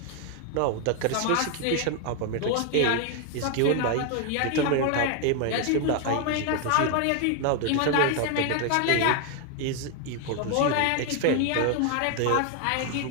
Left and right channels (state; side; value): different; both; correlation 0.01